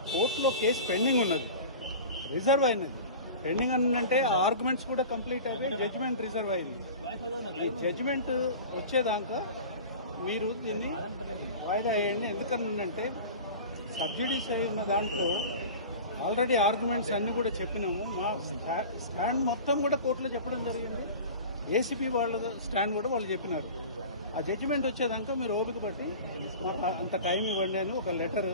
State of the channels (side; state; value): both; inverted; correlation -0.36